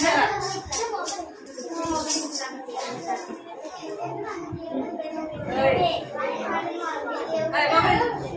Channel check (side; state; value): both; identical; correlation 1.00